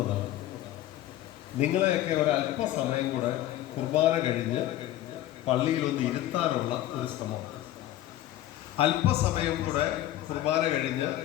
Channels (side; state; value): right; quieter; 13.9 dB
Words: നിങ്ങളെയൊക്കെ ഒരല്പസമയം കൂടെ കുർബാന കഴിഞ്ഞ് പള്ളിയിലൊന്ന് ഇരുത്താനുള്ള ഒരു ശ്രമമാണ്. അല്പസമയം കൂടെ കുർബാന കഴിഞ്ഞ്